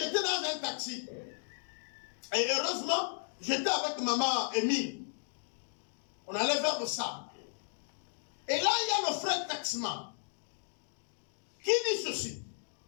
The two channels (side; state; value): right; silent; digital silence